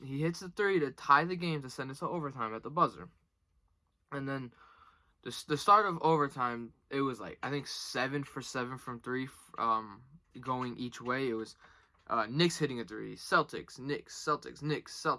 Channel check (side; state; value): both; identical; correlation 1.00